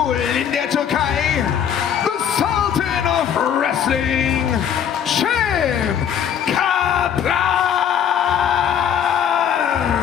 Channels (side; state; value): right; quieter; 8.7 dB